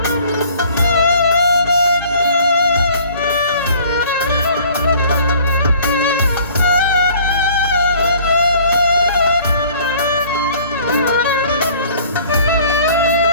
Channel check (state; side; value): inverted; both; correlation -0.53